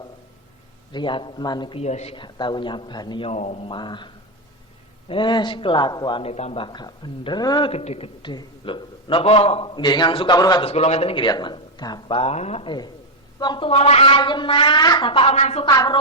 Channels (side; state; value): both; normal; correlation 0.03